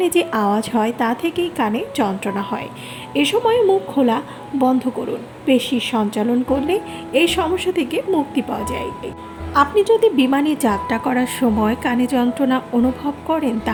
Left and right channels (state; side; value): identical; both; correlation 1.00